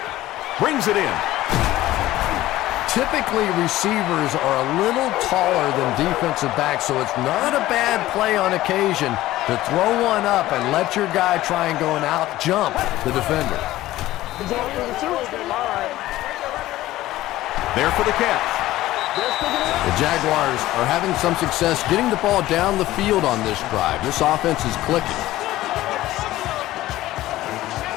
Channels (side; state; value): right; quieter; 15.9 dB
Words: Brings it in. Typically, receivers are a little taller than defensive backs, so it's not a bad play on occasion to throw one up and let your guy try and go and out-jump the defender. There for the catch. The Jaguars are having some success getting the ball down the field on this drive. This offense is clicking.